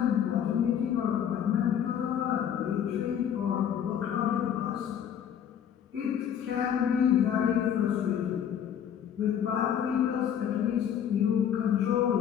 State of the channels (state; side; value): quieter; right; 9.0 dB